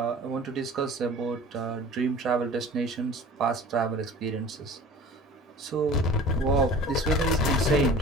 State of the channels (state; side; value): normal; both; correlation 0.42